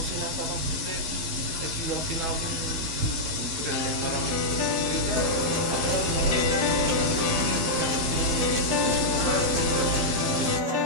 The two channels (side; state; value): left; late; 11 ms